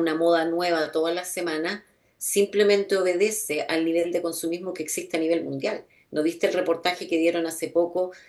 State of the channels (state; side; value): identical; both; correlation 1.00